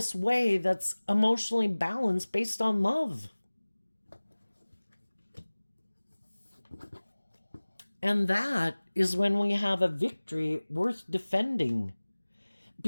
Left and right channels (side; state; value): both; inverted; correlation -1.00